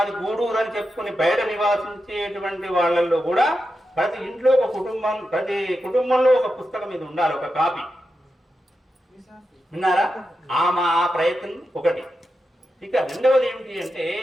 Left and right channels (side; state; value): both; normal; correlation 0.89